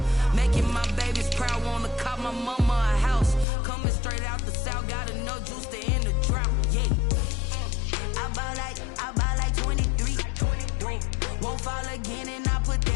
Making my babies proud, wanna cop my mama a house. Coming straight out the south, got enough juice to end the drought. Yeah, I buy like 23. Won't fall again, and I put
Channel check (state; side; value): drops out; right; at 3.5 s